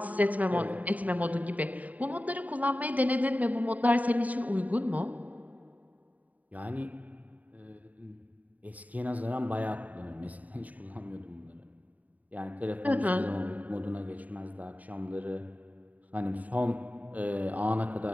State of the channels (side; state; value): left; late; 0.074 ms